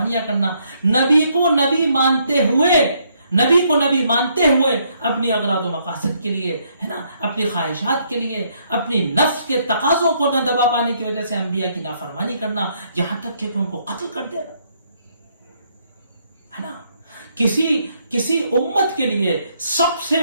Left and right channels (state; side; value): inverted; both; correlation -0.71